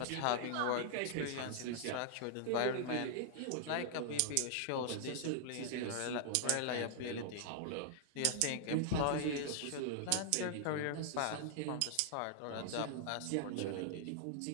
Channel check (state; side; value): different; both; correlation -0.01